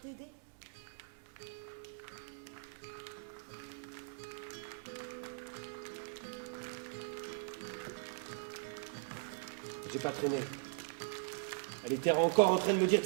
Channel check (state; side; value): silent; left; digital silence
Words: J'ai pas traîné. Elle était encore en train de me dire de